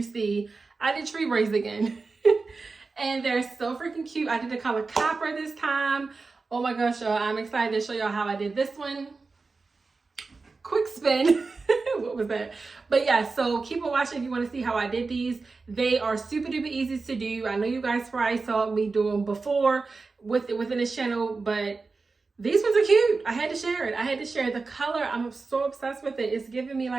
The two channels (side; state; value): left; quieter; 4.1 dB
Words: see, I did tree braids again. And they're so freaking cute. I did the color copper this time. Oh my gosh, y'all. I'm excited to show y'all how I did this one. Quick spin. What was that? But yeah, so keep on watching if you want to see how I did these. They are super duper easy to do. I know you guys probably saw me do them before within this channel, but these ones are cute. I had to share it. I had to share the color. I'm so obsessed with it. It's giving me